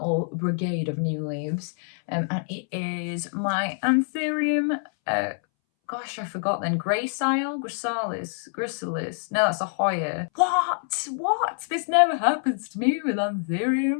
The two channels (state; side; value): silent; right; 61 dB below the other